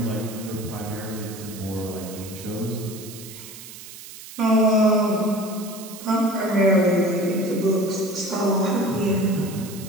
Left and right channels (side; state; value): right; noise; hiss, 15 dB below the sound